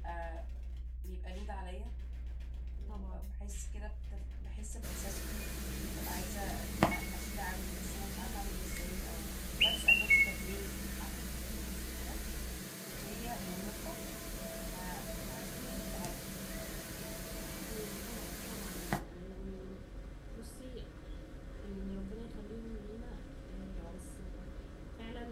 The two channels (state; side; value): identical; both; correlation 1.00